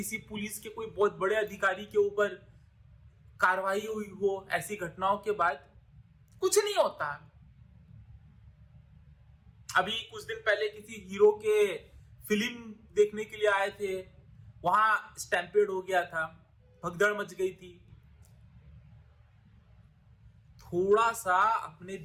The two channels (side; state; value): both; identical; correlation 1.00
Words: पुलिस के कोई बहुत बड़े अधिकारी के ऊपर कार्रवाई हुई हो? ऐसी घटनाओं के बाद कुछ नहीं होता। अभी कुछ दिन पहले किसी हीरो के फिल्म देखने के लिए आए थे, वहां स्टैम्पेड हो गया था, भगदड़ मच गई थी। थोड़ा सा अपने